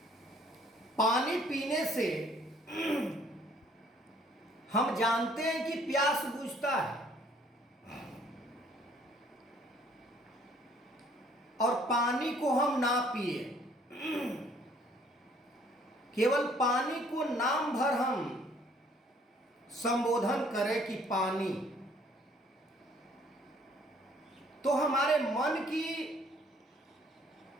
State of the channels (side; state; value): both; normal; correlation 0.60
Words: पानी पीने से हम जानते हैं कि प्यास बुझता है, और पानी को हम ना पिए, केवल पानी को नाम भर हम संबोधन करें कि पानी, तो हमारे मन की